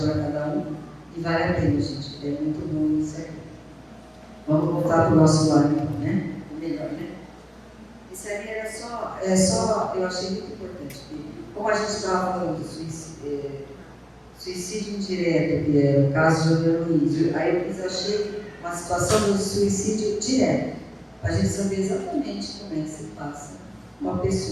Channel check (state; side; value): identical; both; correlation 1.00